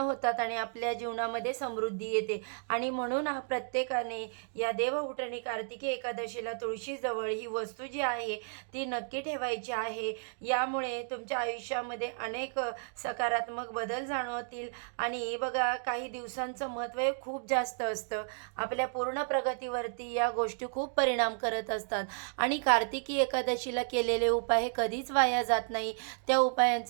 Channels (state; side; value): silent; left; digital silence